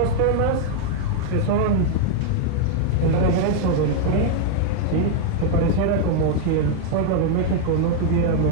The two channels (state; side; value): different; both; correlation 0.00